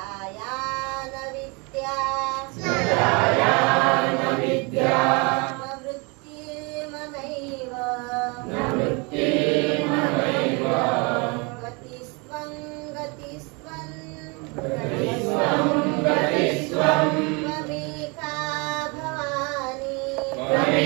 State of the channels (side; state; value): left; quieter; 30.0 dB